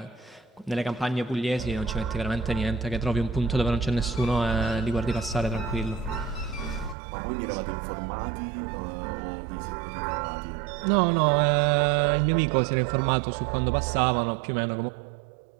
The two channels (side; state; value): left; drops out; at 7.0 s